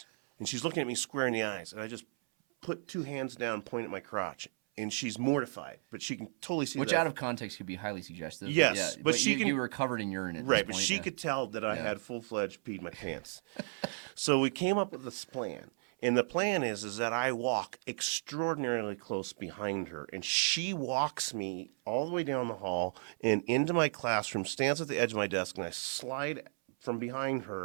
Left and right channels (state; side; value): silent; left; 55 dB below the other